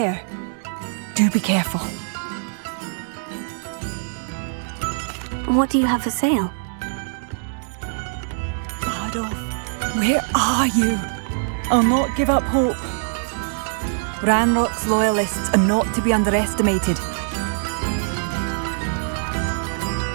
Do be careful. What do you have for sale? Adolf, where are you? I'll not give up hope. Ranrock's loyalists are not to be underestimated.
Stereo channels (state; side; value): silent; left; digital silence